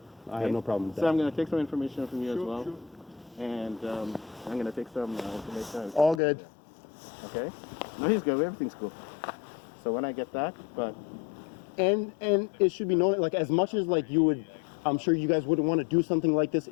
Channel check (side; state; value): right; drops out; at 6.2 s